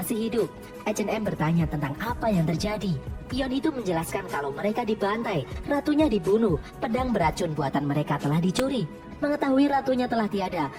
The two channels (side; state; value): both; identical; correlation 1.00